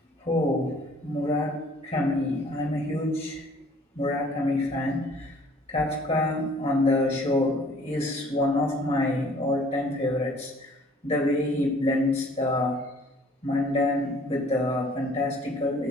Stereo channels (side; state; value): both; normal; correlation 0.55